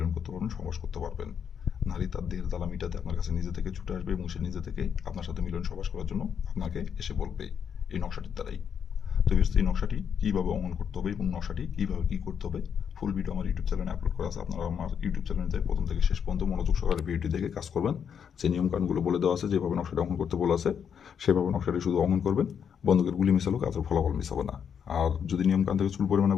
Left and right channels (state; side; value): quieter; right; 7.6 dB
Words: করতে পারবেন, সহবাস করতে পারবেন। নারী তার দেহের জ্বালা মিটাতে আপনার কাছে নিজে থেকে ছুটে আসবে এবং সে নিজে থেকে আপনার সাথে মিলন সহবাস করার জন্য আপনাকে এসে বলবে এই নকশাটির দ্বারাই। তো ভিউয়ার্স, এই নকশাটি কীভাবে অমল করতে হবে এবং নকশাটি কীভাবে কী করতে হবে ফুল ভিডিও আমার ইউটিউব চ্যানেলে আপলোড করা আছে। আপনারা আমার ইউটিউব চ্যানেলে যাই প্রথম থেকে শেষ পর্যন্ত মনোযোগ সহকারে ভিডিওটি দেখে কাজ করবেন। যে নিয়মকানুনগুলো বলে দেওয়া আছে, যেভাবে নকশাটি অঙ্কন করতে বলা আছে সেভাবে নকশাটি শুধু অঙ্কন করবেন। বন্দুকের গুলি মিশালো কাজের ফলাফল মিশাবে না। আর যদি নিয়মকানুন থেকে চুল পরিমাণে